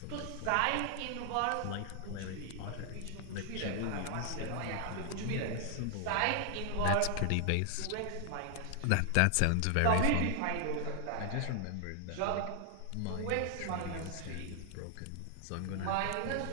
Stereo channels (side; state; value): both; different; correlation 0.00